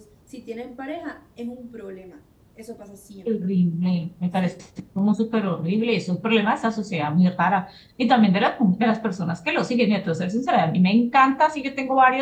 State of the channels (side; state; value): both; identical; correlation 1.00